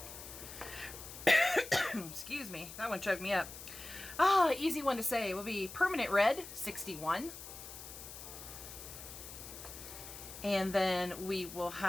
Excuse me, that one choked me up. Easy one to say. It will be Permanent Red, 61. And then we will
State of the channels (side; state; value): left; noise; hiss, 12 dB below the sound